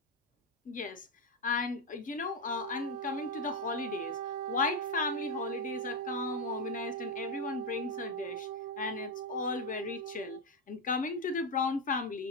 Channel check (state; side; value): normal; both; correlation 0.06